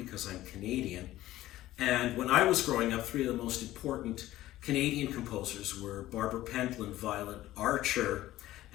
I'm Canadian. And when I was growing up, three of the most important Canadian composers were Barbara Pentland, Violet Archer,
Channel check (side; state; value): right; quieter; 15.2 dB